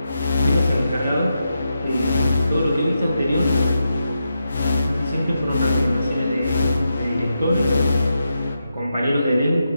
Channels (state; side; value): inverted; both; correlation -0.86